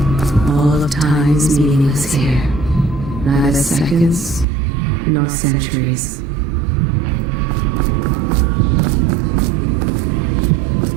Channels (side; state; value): left; drops out; at 4.5 s